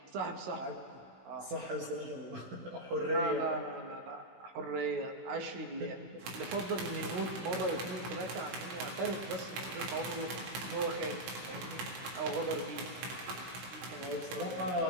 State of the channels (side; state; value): left; late; 16 ms